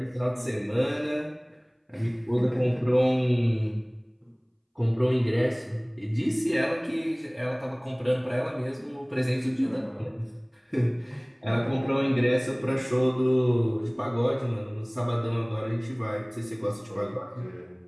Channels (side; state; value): both; identical; correlation 1.00